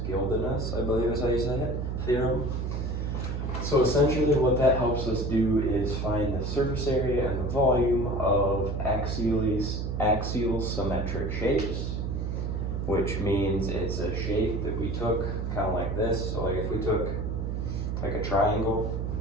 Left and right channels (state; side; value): noise; right; hum, 2 dB below the sound